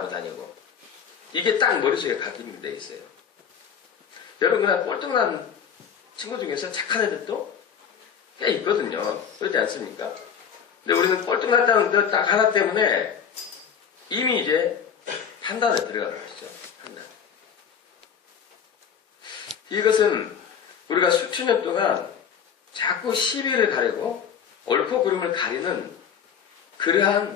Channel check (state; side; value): quieter; right; 7.6 dB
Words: 다니고 이게 딱 머릿속에 각인이 돼 있어요. 여러분 그냥 꼴등 난 친구 중에서 착한 애들도 꽤 있거든요. 그렇지 않습니까? 근데 우리는 꼴등 났다는 것 딱 하나 때문에 이미 이제 판단에 들어가는 것이죠. 판단. 이것은 우리가 수천 년 동안 자꾸 시비를 가리고 옳고 그름을 가리는